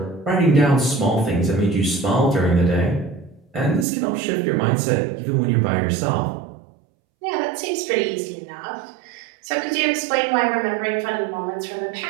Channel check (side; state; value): left; drops out; at 3.9 s